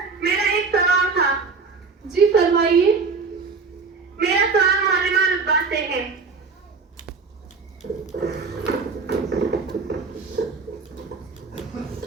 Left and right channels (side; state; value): left; quieter; 4.6 dB